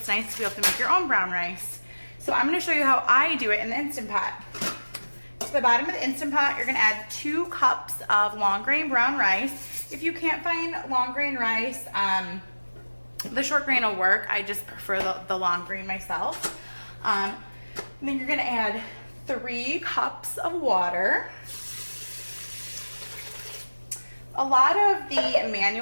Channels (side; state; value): both; inverted; correlation -1.00